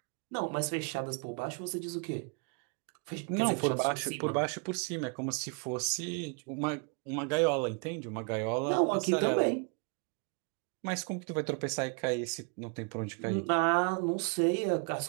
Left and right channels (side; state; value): left; quieter; 35.9 dB